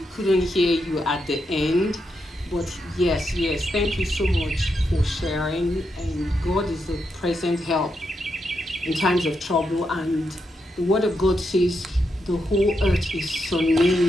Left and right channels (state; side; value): normal; both; correlation 0.83